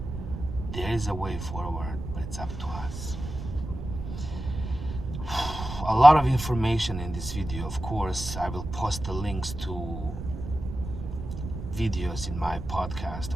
There is a way forward, but it's up to us. A lot of information in this video. Of course, I will post the links to videos in my podcast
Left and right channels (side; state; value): right; noise; rumble, 8 dB below the sound